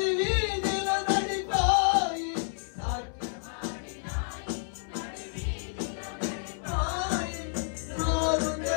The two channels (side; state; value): right; silent; 58 dB below the other